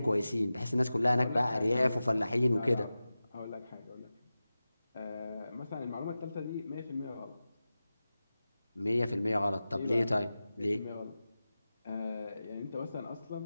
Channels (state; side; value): inverted; both; correlation -0.95